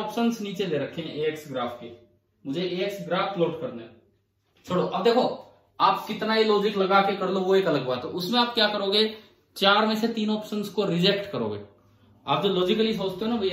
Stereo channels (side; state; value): both; identical; correlation 1.00